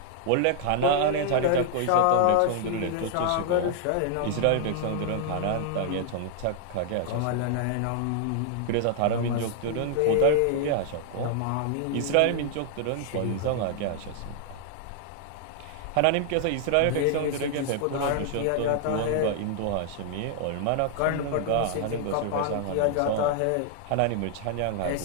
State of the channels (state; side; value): different; both; correlation 0.00